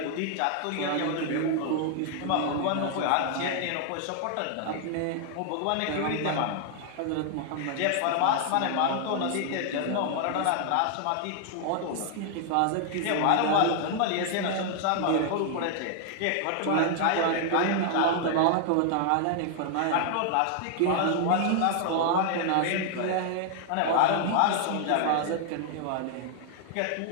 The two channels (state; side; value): different; both; correlation 0.00